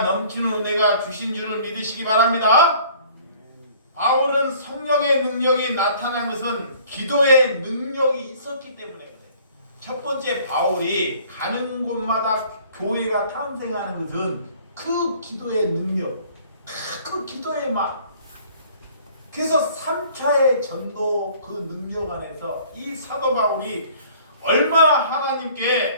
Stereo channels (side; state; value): both; inverted; correlation -0.54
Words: 넘치는 은혜가 주신 줄을 믿으시기 바랍니다. 바울은 성령의 능력이 나타난 것은 기도의 능력이 있었기 때문에 그래요. 첫 번째, 바울이 가는 곳마다 교회가 탄생하는 것은 그 기도의 능력, 그 기도의 맛. 그래서 3차의 전도 그 능력 안에서 이 사도 바울이 얼마나